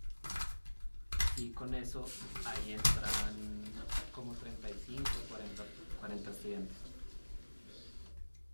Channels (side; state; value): both; inverted; correlation -1.00